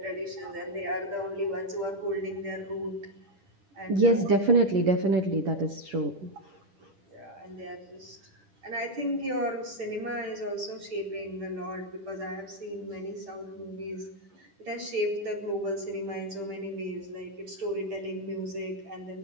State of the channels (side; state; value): left; late; 10 ms